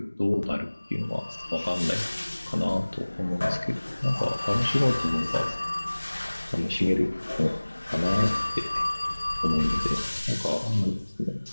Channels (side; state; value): both; inverted; correlation -1.00